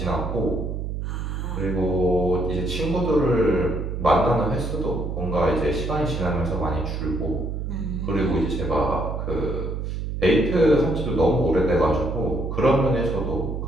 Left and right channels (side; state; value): right; noise; hum, 4 dB below the sound